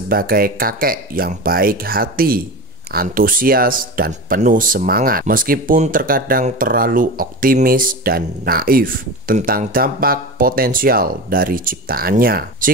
kakek yang baik hati, antusias, dan penuh semangat, meskipun terkadang terlalu optimis dan naif tentang dampak potensial dari ciptaannya.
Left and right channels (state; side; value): normal; both; correlation 0.27